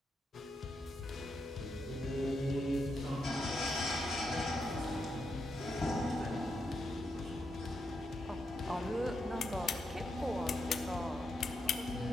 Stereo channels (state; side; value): normal; both; correlation 0.83